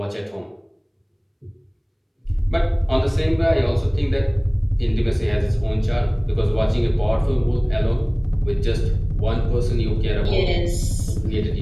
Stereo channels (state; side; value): identical; both; correlation 1.00